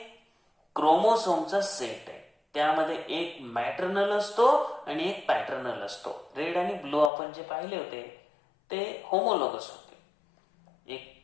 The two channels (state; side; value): drops out; right; at 7.1 s